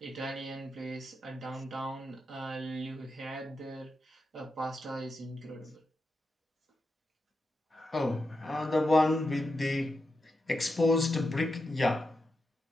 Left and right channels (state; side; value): normal; both; correlation 0.87